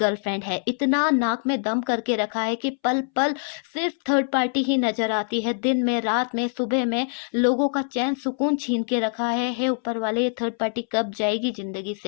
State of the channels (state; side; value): silent; right; 62 dB below the other